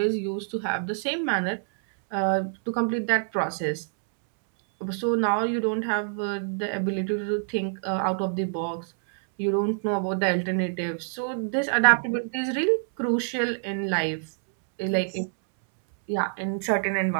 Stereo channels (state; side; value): silent; left; 61 dB below the other